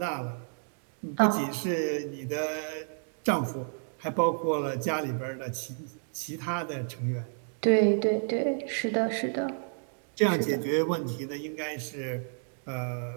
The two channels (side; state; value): left; silent; digital silence